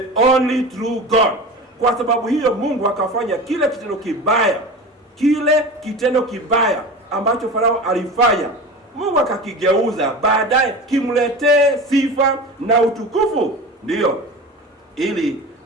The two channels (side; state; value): both; normal; correlation 0.32